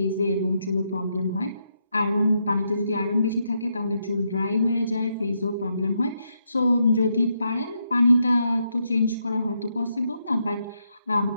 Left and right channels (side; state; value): both; inverted; correlation -0.80